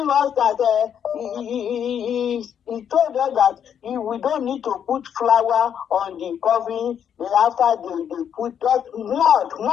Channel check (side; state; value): right; quieter; 8.6 dB